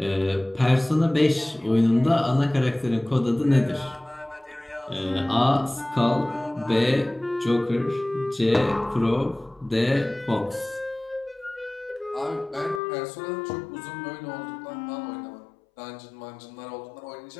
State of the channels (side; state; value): right; drops out; at 12.8 s